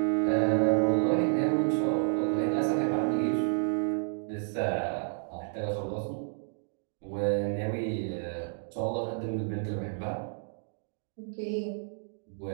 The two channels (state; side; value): silent; left; digital silence